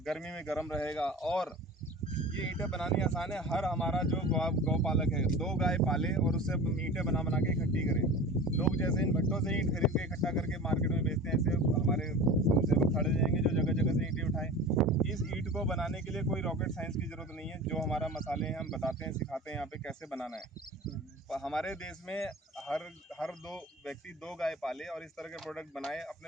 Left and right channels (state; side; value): normal; both; correlation 0.36